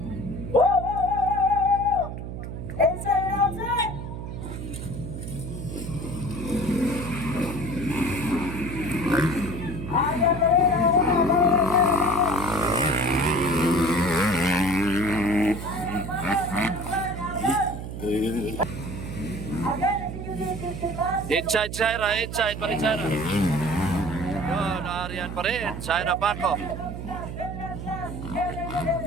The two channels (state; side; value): noise; right; hum, 7 dB below the sound